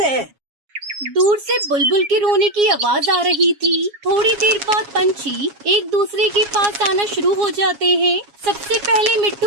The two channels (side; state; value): left; late; 7.3 ms